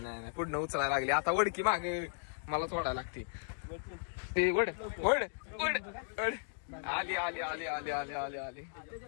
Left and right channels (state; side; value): silent; right; digital silence